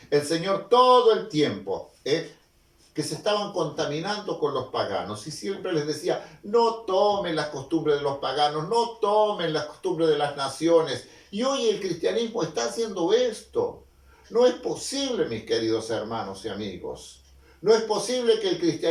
El Señor todo el tiempo, que se estaban contaminando con los paganos y siempre les decía, no tomen las costumbres de los paganos, no tomen las costumbres de las naciones. Y hoy el cristianismo está haciendo esto. No es posible, mis queridos hermanos y amigos, no es posible que el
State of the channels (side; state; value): both; identical; correlation 1.00